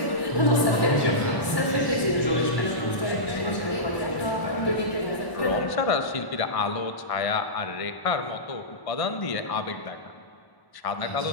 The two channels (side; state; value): right; late; 1.1 ms